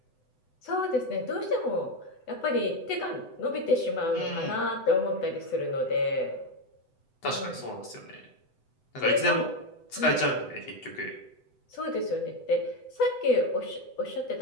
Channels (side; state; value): right; late; 7.9 ms